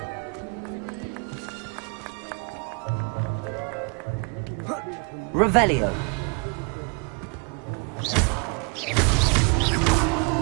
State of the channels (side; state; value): left; quieter; 34.8 dB